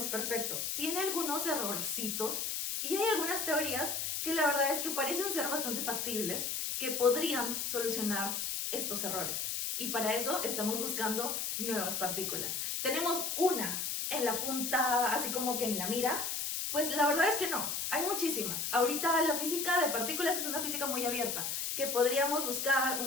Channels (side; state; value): left; noise; hiss, 1 dB below the sound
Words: perfecto. Tiene algunos errorcitos y hay algunas teorías que la verdad es que parecen ser bastante factibles, que podrían solucionar estos errores. Y para eso estamos buscando nuevas partículas. Tenemos una en la punta, así como que en la mira. Pues la verdad es que no, hay muchísimas. Ahorita la física de partículas es una física muy abierta, que podríamos buscar